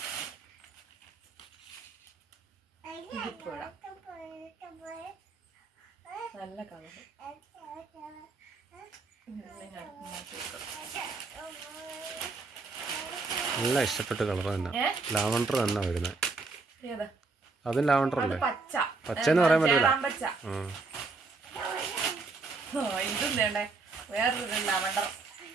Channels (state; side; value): quieter; left; 4.0 dB